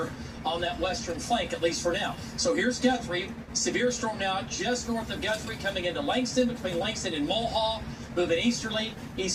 on that western flank, at least for now. So here's Guthrie. Severe storm now just north of Guthrie coming into Langston, between Langston and Mulhall. Moving easterly,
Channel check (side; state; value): both; identical; correlation 1.00